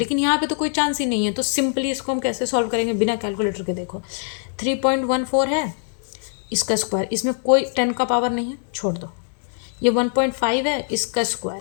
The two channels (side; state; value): right; silent; 64 dB below the other